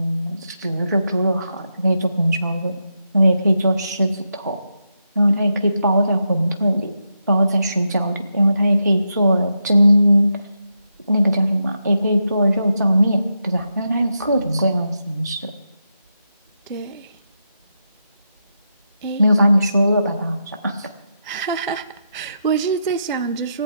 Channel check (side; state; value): both; inverted; correlation -0.85